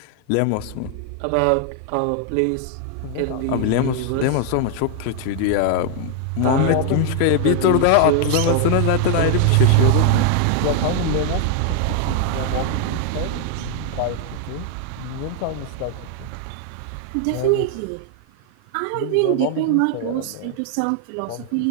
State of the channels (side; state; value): both; different; correlation 0.00